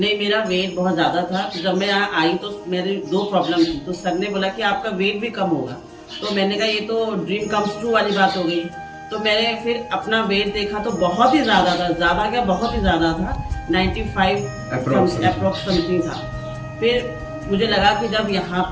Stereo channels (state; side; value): identical; both; correlation 1.00